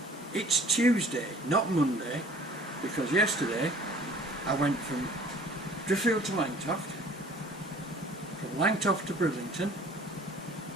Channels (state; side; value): normal; both; correlation 0.50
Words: It's Tuesday, not Monday, because yesterday I went from Driffield to Langtoft, from Langtoft to Bridlington,